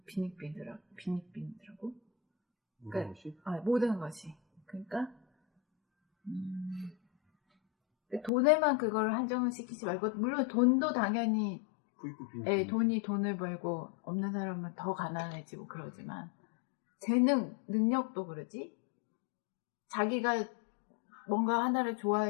빈익빈이더라고. 모든 것이? 모든 것이. 그러니까 돈에만 그걸 한정을 시키지 말고, 물론 돈도 당연히 부익부 빈익빈. 돈이 돈을 벌고 없는 사람은 더 가난해지고 그러지만, 재능, 능력도 그러지. 자기가 뭔가 하나를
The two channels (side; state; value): right; drops out; at 8.3 s